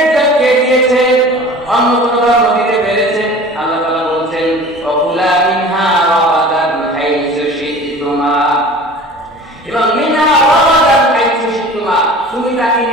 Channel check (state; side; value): normal; both; correlation 0.41